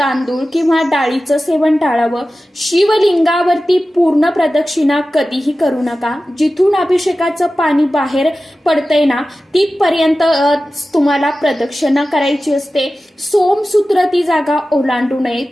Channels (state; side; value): normal; both; correlation 0.95